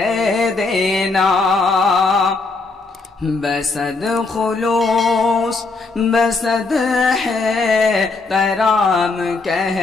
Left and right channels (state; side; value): quieter; right; 3.8 dB